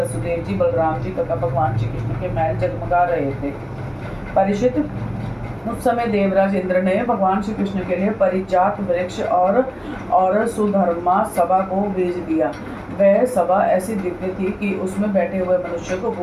जी, बलराम जी तथा भगवान श्री कृष्ण के महल जगमगा रहे थे। परीक्षित, उस समय देवराज इंद्र ने भगवान श्री कृष्ण के लिए परिजात वृक्ष और सुधर्मा सभा को भेज दिया। वह सभा ऐसी दिव्य थी कि उसमें बैठे हुए मनुष्य को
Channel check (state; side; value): identical; both; correlation 1.00